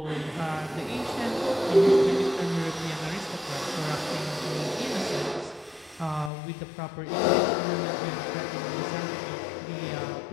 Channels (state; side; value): drops out; right; at 6.3 s